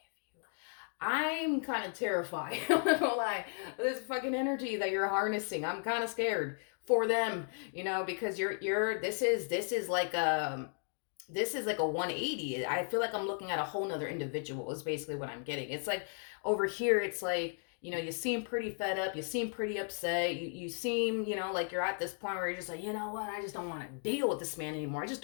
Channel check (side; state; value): right; silent; 54 dB below the other